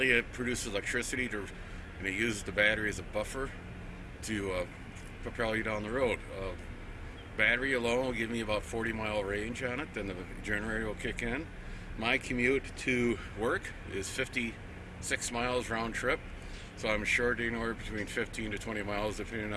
it produces electricity and it uses the battery as a buffer to propel you down the road. Battery alone will give me about 40-mile range on it, then the generator will kick in. My commute to work is 56 miles round trip, so I'm short anywhere between 15 to 20 miles depending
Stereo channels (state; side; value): identical; both; correlation 1.00